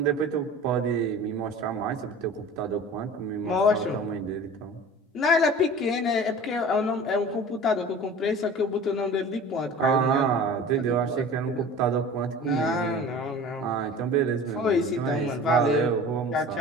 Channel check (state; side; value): normal; both; correlation 0.40